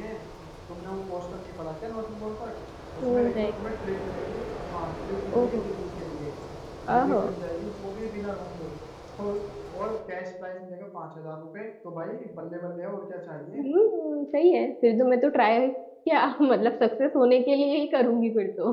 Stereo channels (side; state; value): both; identical; correlation 1.00